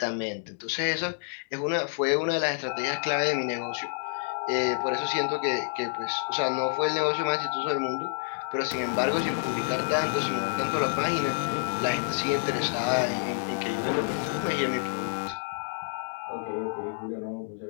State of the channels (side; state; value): right; silent; digital silence